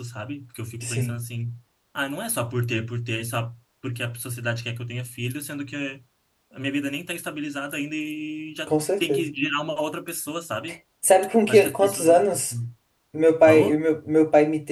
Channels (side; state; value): both; identical; correlation 1.00